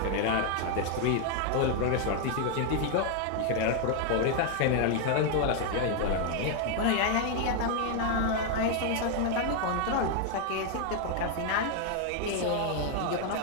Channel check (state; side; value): different; both; correlation 0.00